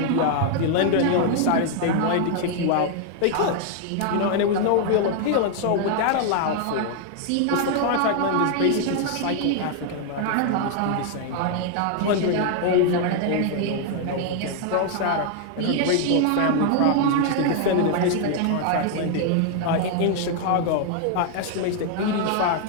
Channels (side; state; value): both; different; correlation 0.00